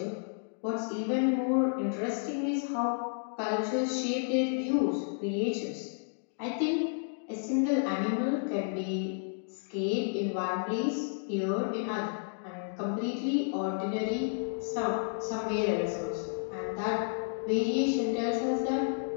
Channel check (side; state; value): right; silent; digital silence